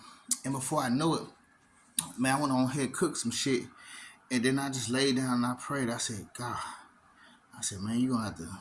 And before I know it, man, I went on here, cooked some shit, and then I just laid down and I prayed. I said, God, I said, man, you gonna have to,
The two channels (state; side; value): identical; both; correlation 1.00